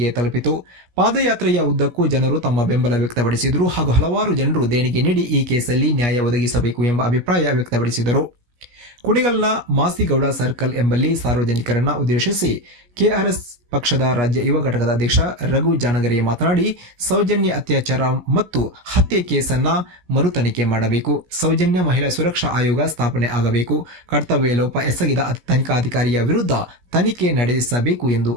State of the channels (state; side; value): late; left; 17 ms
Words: ತಲುಪಿತು. ಪಾದಯಾತ್ರೆಯ ಉದ್ದಕ್ಕೂ ಜನರು ತಮ್ಮ ಬೆಂಬಲ ವ್ಯಕ್ತಪಡಿಸಿದರು ಹಾಗೂ ಹಲವಾರು ಜನರು ದೇಣಿಗೆ ನೀಡಿ ಈ ಕೇಸಲ್ಲಿ ನ್ಯಾಯ ಒದಗಿಸಬೇಕು ಎಂಬ ಅಭಿಪ್ರಾಯ ವ್ಯಕ್ತಪಡಿಸಿದರು. ಕುಣಿಗಲ್ನ ಮಾಸಿಗೌಡ ಸರ್ಕಲ್ ಎಂಬಲ್ಲಿ ಸಾರ್ವಜನಿಕರನ್ನ ಉದ್ದೇಶಿಸಿ ಕೆಆರ್ಎಸ್ ಪಕ್ಷದ ರಾಜ್ಯ ಯುವ ಘಟಕದ ಅಧ್ಯಕ್ಷ ರಘು ಜಾನಗರೆ ಮಾತನಾಡಿ, ಸೌಜನ್ಯ ಅತ್ಯಾಚಾರ ಮತ್ತು ಹತ್ಯೆ ಕೇಸನ್ನ ಮರು ತನಿಖೆ ಮಾಡಬೇಕು. ಸೌಜನ್ಯ ಮಹಿಳಾ ಸುರಕ್ಷಾ ಆಯೋಗ ಸ್ಥಾಪನೆ ಆಗಬೇಕು. ಕರ್ತವ್ಯ ಲೋಪ ಎಸಗಿದ ತನಿಖಾಧಿಕಾರಿಯ ವಿರುದ್ಧ ತನಿಖೆ ನಡೆಸಬೇಕು ಎಂದು